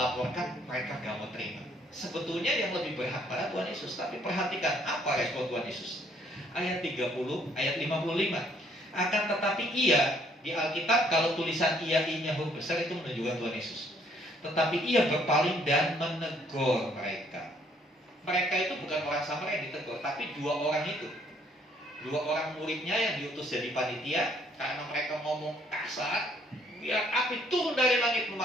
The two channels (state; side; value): normal; both; correlation 0.65